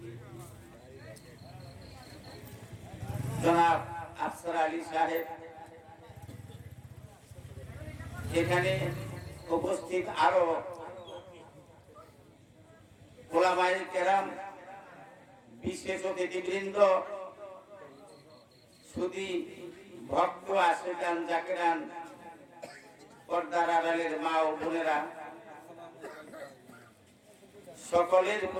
জনাব আফসার আলী সাহেব, এখানে উপস্থিত আরো ওলামায়ে কেরাম, বিশেষ অতিথিবৃন্দ, সুধী ভক্ত আশিকান জাকিরান, পর্দার আড়ালের মা ও বোনেরা, সকলের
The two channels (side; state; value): both; identical; correlation 1.00